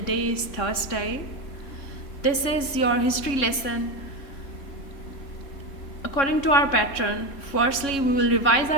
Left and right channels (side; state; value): right; late; 3.6 ms